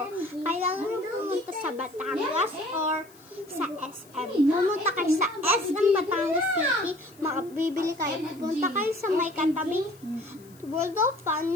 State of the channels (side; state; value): left; noise; hiss, 26 dB below the sound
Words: Kailangan nyo pumunta sa Batangas or sa SM. Pumunta kayo sa SM Batangas City, makabibili kayo. Pumunta kayo sa may katabing World of Fun